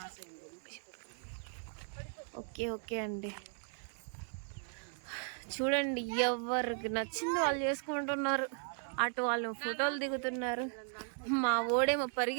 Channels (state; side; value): silent; left; 53 dB below the other